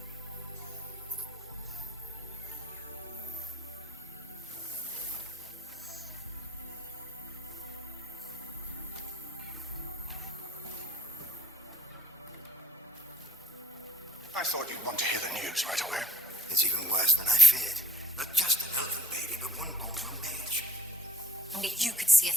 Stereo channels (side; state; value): both; normal; correlation 0.55